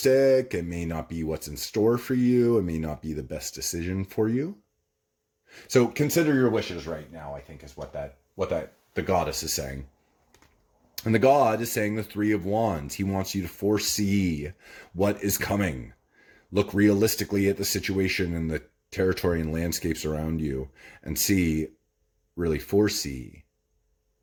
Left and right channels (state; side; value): identical; both; correlation 1.00